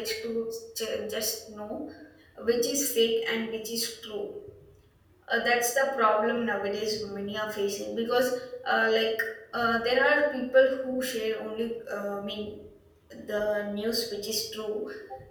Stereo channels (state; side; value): identical; both; correlation 1.00